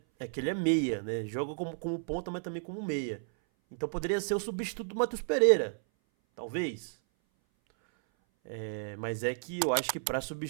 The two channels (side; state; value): left; silent; 56 dB below the other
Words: é que ele é meia, né, joga como ponta, mas também como meia. Então poderia ser o substituto do Matheus Pereira, talvez. Mas é que eu acho que pra